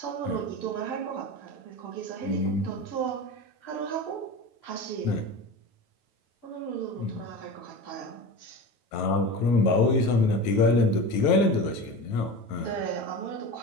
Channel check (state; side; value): late; right; 9.2 ms